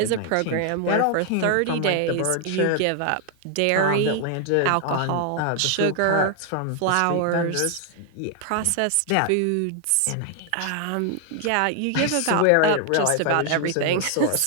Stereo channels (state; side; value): different; both; correlation 0.00